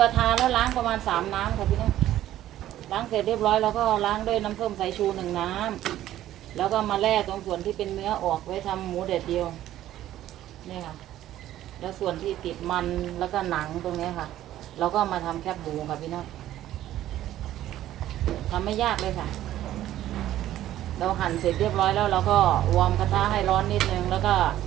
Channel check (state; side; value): quieter; left; 13.2 dB